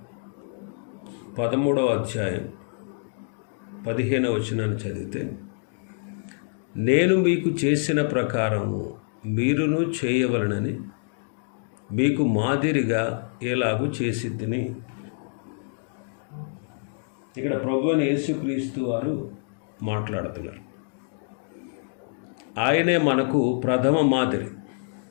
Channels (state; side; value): silent; right; digital silence